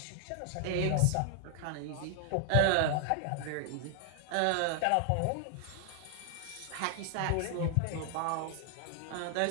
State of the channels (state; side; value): different; both; correlation 0.00